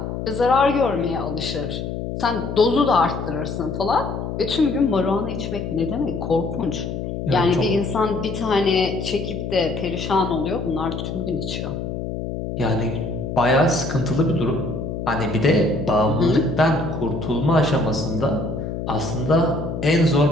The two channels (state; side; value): noise; left; hum, 5 dB below the sound